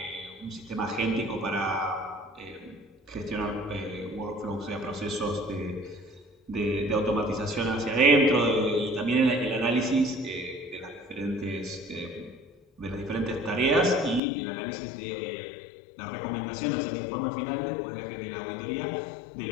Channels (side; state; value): right; drops out; at 14.2 s